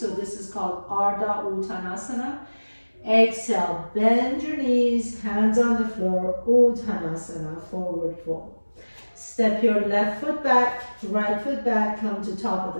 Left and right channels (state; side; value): inverted; both; correlation -1.00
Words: this is called Ardha Uttanasana. Exhale, bend your knees, hands on the floor, Uttanasana, forward fold. Step your left foot back, right foot back, come to top of